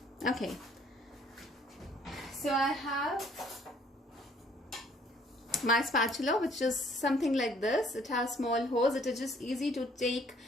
Okay, so So I have my spatula, which is something like this. It has small holes. It is just easy to take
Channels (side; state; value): both; normal; correlation 0.61